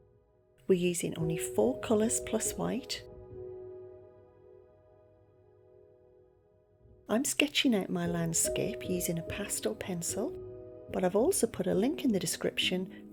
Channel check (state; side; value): identical; both; correlation 1.00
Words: We're using only 4 colours plus white. I'm sketching out my landscape using a pastel pencil, but I've also put a link in the description